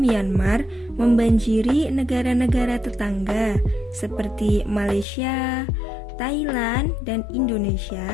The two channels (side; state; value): right; drops out; at 5.1 s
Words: membanjiri negara-negara tetangga seperti Malaysia, Thailand, dan